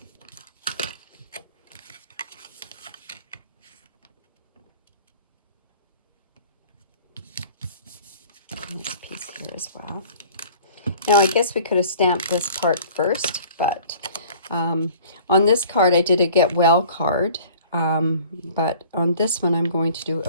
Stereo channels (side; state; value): both; inverted; correlation -0.48